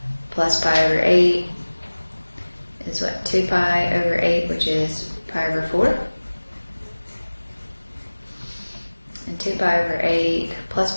plus pi over 8 is what? 2 pi over 8, which is pi over 4. And 2 pi over 8 plus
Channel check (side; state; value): both; inverted; correlation -1.00